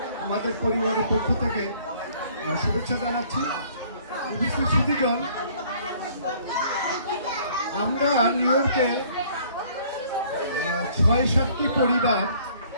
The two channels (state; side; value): inverted; both; correlation -0.58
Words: আমাদের পরিবারের পক্ষ থেকে শুভেচ্ছা জানাচ্ছি। উপস্থিত সুধীজন, আমরা নিউ ইয়র্কে ৬-৭টি পরিবার